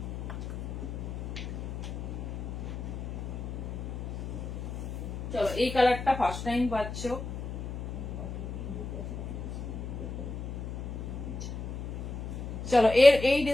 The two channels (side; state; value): left; noise; hum, 6 dB below the sound